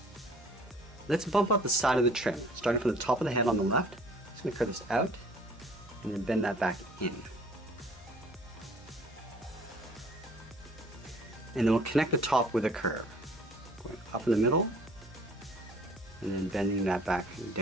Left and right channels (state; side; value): normal; both; correlation 0.53